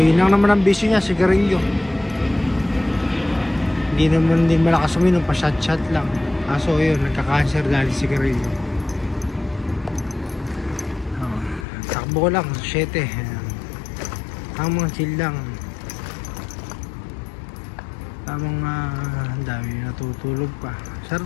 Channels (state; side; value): drops out; right; at 11.7 s